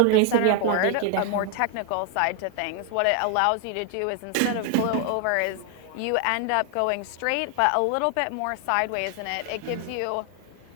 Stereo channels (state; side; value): different; both; correlation 0.00